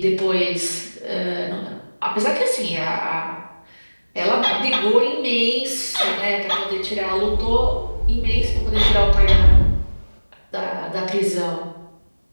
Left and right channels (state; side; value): inverted; both; correlation -1.00